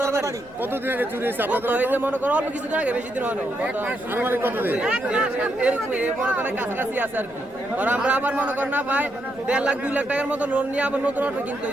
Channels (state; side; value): noise; left; rumble, 24 dB below the sound